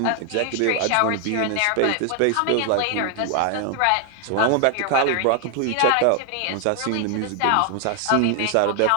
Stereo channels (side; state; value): both; different; correlation 0.00